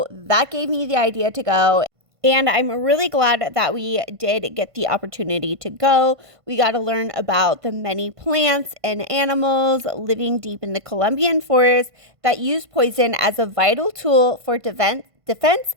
that gave me the idea to go. And I'm really glad that we did get the opportunity to go. We got to learn about the many plants and animals living deep in the Colombian forest that use poison as a vital tool for defense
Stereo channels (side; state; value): left; late; 1.5 ms